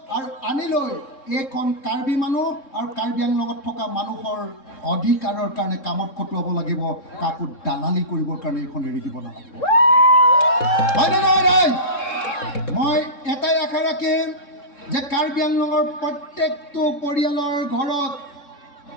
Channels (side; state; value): right; late; 3.7 ms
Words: আৰু আনি লৈ এইখন কাৰ্বি মানুহ আৰু কাৰ্বি আংলঙত থকা মানুহৰ অধিকাৰৰ কাৰণে কামত খটুৱাব লাগিব কাকো দালালি কৰিবৰ কাৰণে এইখন এৰি দিব নালাগিব হয়নে নহয় ৰাইজ মই এটাই আশা ৰাখিম যে কাৰ্বি আংলঙৰ প্ৰত্যেকটো পৰিয়ালৰ ঘৰত